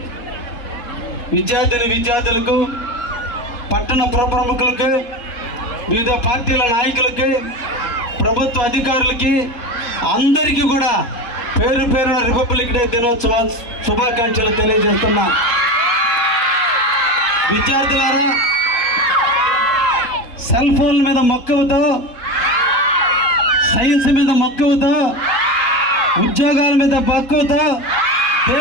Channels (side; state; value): right; late; 3.7 ms